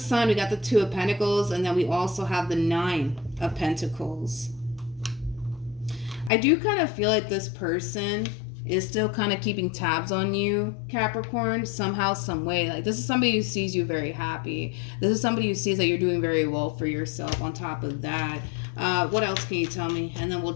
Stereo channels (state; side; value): drops out; right; at 6.3 s